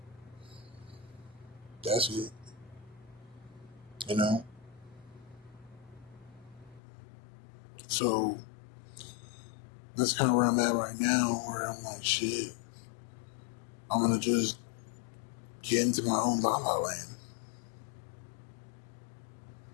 That's it. You know? So, that's kind of where I'm at right now, where I'm like, shit, I'm going to just get into my own La La Land.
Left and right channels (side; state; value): right; drops out; at 6.8 s